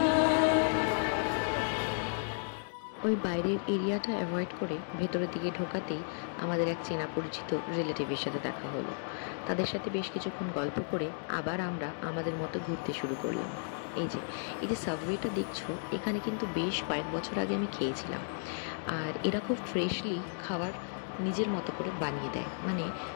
ওই বাইরের এরিয়াটা অ্যাভয়েড করে ভেতরের দিকে ঢোকাতেই আমাদের এক চেনা পরিচিত রিলেটিভের সাথে দেখা হলো। তাদের সাথে বেশ কিছুক্ষণ গল্প করে আবার আমরা আমাদের মতো ঘুরতে শুরু করলাম। এই যে সাবওয়েটা দেখছো, এখানে কিন্তু বেশ কয়েক বছর আগে আমি খেয়েছিলাম। আর এরা খুব ফ্রেশলি খাবার নিজের মতো করে বানিয়ে দেয়, মানে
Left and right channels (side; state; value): right; silent; digital silence